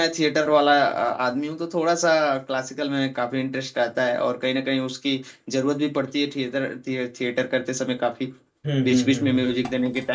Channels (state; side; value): identical; both; correlation 1.00